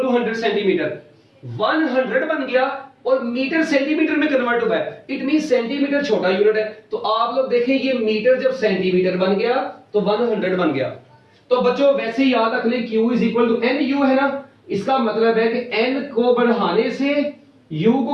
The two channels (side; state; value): both; identical; correlation 1.00